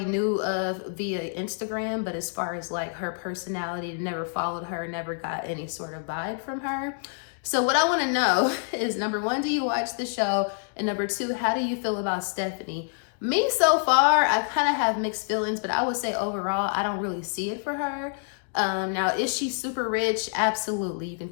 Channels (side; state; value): right; silent; digital silence